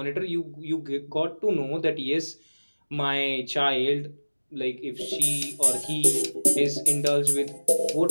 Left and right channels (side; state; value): both; inverted; correlation -1.00